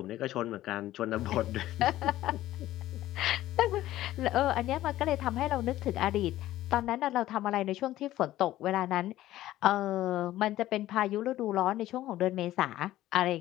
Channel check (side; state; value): right; quieter; 14.7 dB